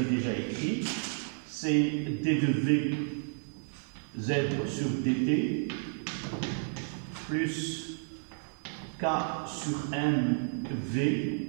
déjà écrite, c'est D de V Z sur dt plus K sur N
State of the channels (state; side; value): silent; left; digital silence